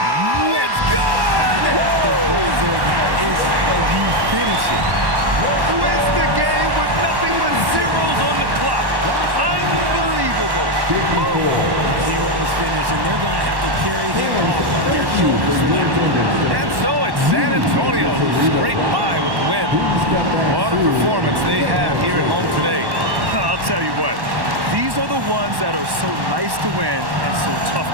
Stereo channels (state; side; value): late; left; 1.1 ms